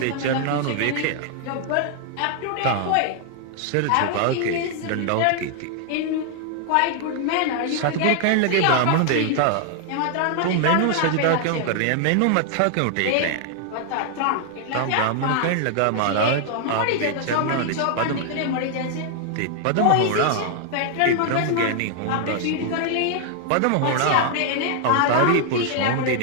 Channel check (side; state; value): both; different; correlation 0.00